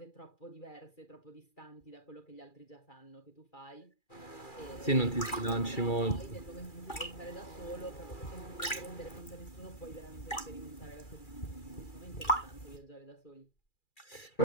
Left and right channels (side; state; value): right; late; 2.4 ms